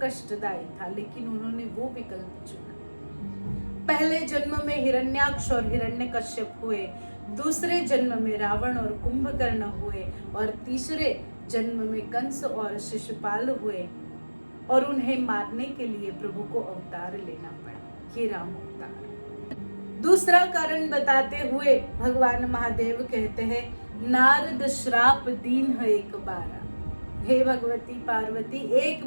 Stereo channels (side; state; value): both; inverted; correlation -1.00